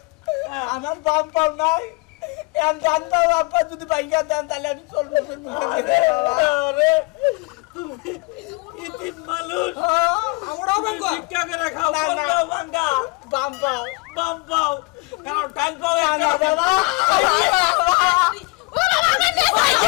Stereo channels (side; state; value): right; quieter; 27.2 dB